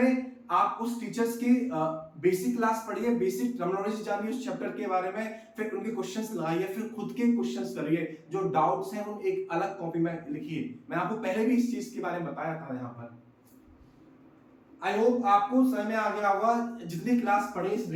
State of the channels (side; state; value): both; identical; correlation 1.00